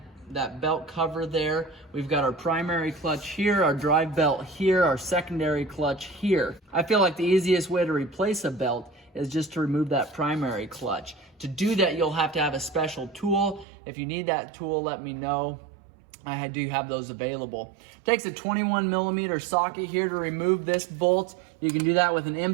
belt cover there. We've got our primary clutch here, our drive belt here, our secondary clutch here. I feel like the easiest way to replace a belt is just to remove that primary clutch. To do that, you'll have to have a special tool. If you need that tool, let me know. I do have those available. It takes a 21mm socket here to remove this bolt. You can do that with an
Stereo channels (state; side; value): drops out; left; at 13.7 s